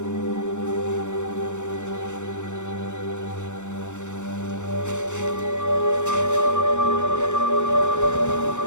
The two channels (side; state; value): right; late; 0.84 ms